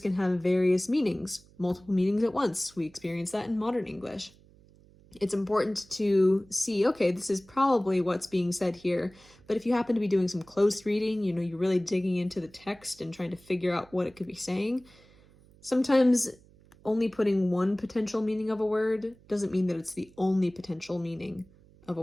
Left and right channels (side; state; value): right; noise; hum, 27 dB below the sound